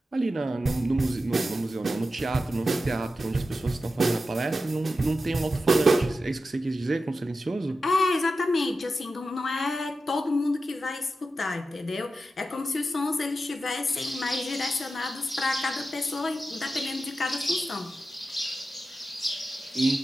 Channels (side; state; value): both; normal; correlation 0.91